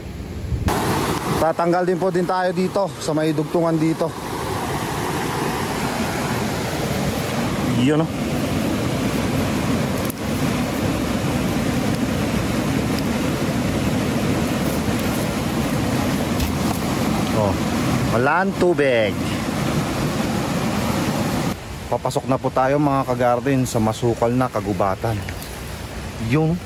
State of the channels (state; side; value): identical; both; correlation 1.00